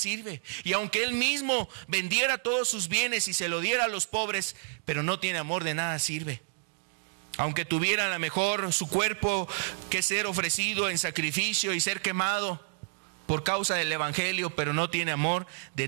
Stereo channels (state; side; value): silent; left; digital silence